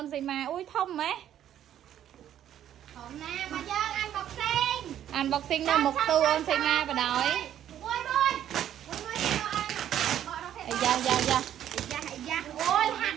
នសីមាអ៊ុយធំហ៎ ហមណាមកយើងអានបកសេង unboxing នៅមុខទូអូនសីមាបដ ாய் មួយអាយ៉ាយ៉ាយ៉ា អូយហាត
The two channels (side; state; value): left; quieter; 10.9 dB